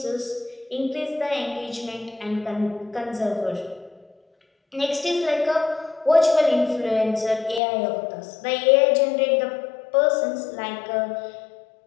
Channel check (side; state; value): right; drops out; at 7.6 s